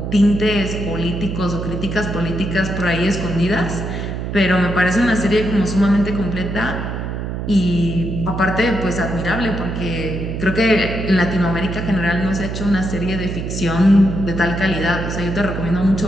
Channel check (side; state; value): right; noise; hum, 5 dB below the sound